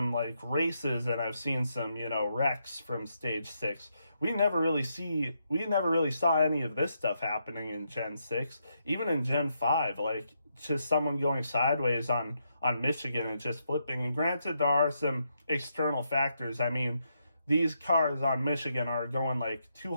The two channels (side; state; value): both; inverted; correlation -0.80